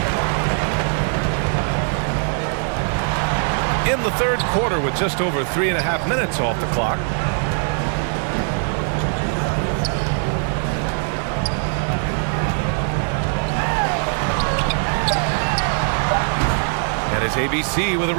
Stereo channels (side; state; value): left; silent; 55 dB below the other